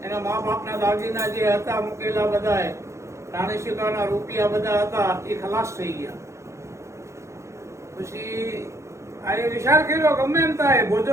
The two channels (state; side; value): late; left; 0.14 ms